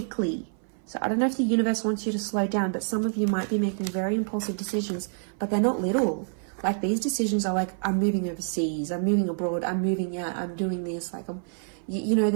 So I don't know if the universe wants you to slow down, but some of you might be making very impulsive decisions, but they're not little. Like, these decisions are like, I'm moving overseas, I'm moving abroad, I'm moving out, I'm doing this. Like, you know,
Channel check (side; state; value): left; silent; 57 dB below the other